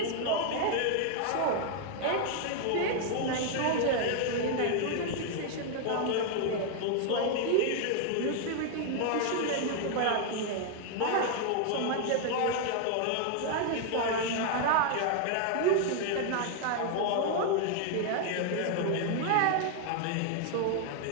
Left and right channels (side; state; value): both; different; correlation 0.00